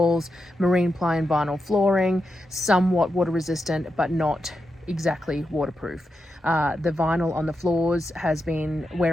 marine ply and vinyl flooring, somewhat water resistant, but not exactly waterproof. The vinyl on the floors has been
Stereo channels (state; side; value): normal; both; correlation 0.87